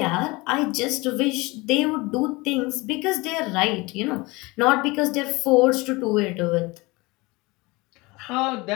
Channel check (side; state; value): right; quieter; 23.8 dB